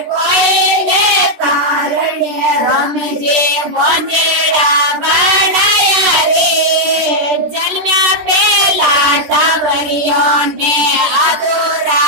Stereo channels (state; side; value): late; left; 13 ms